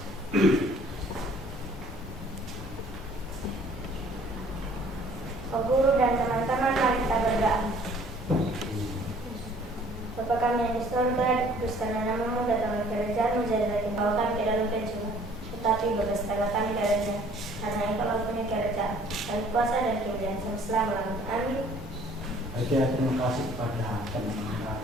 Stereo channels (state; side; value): normal; both; correlation 0.55